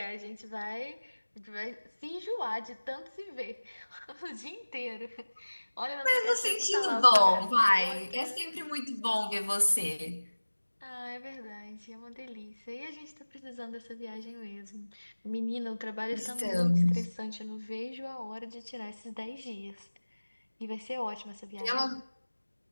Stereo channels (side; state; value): both; inverted; correlation -1.00